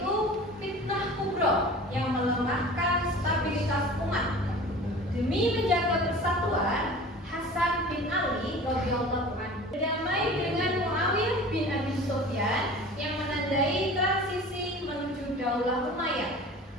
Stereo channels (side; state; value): both; normal; correlation 0.40